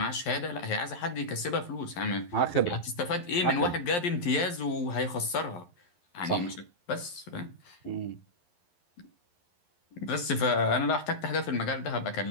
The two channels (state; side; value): late; right; 11 ms